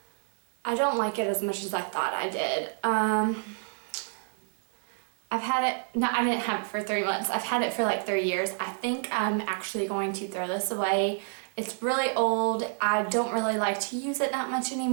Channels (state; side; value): silent; left; digital silence